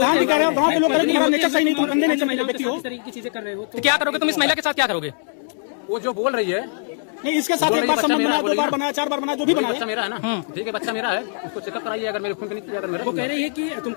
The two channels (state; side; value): silent; right; digital silence